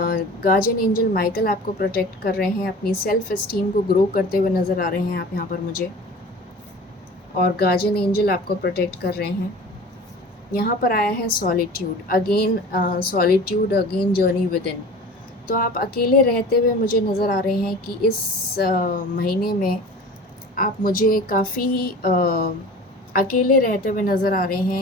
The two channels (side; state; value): both; normal; correlation 0.40